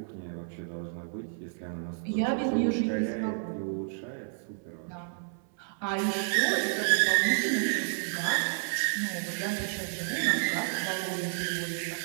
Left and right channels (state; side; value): silent; left; 57 dB below the other